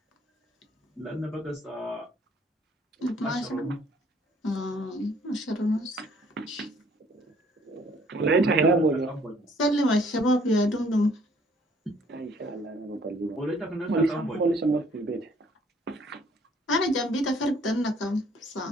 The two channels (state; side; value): normal; both; correlation 0.61